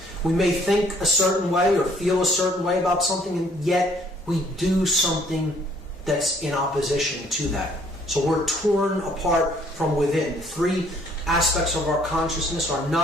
We may think a certain way or feel a certain way about something, and yet we do something that's in opposition to that. So we're torn apart from within. The three aspects of our consciousness are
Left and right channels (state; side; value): normal; both; correlation 0.61